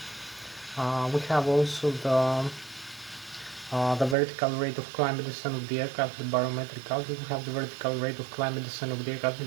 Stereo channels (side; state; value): left; drops out; at 4.2 s